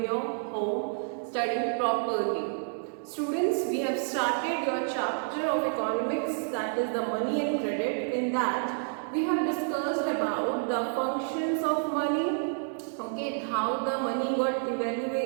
your home, studying properly. Students, we have started your chapter of economics, that is the money and credit. In that, we have discussed about the functions of money, okay, how the money got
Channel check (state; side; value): silent; left; digital silence